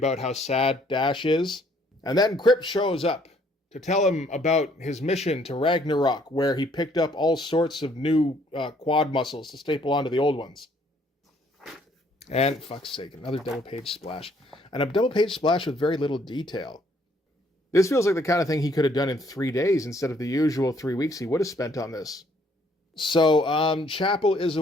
how sad Dash is. And then Crypt shows up to tell him about his mission to Ragnarok, where he picked up all sorts of new quad muscles to staple onto the old ones. And, fuck's sake, another double-page splash. And a double-page splash with very little detail. This feels like the kind of thing he could have done in 3 days instead of the usual 3 weeks he would have spent on this. So, Chapel is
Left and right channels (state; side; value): normal; both; correlation 0.64